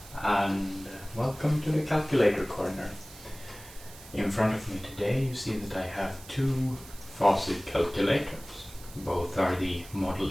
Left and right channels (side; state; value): right; noise; hiss, 18 dB below the sound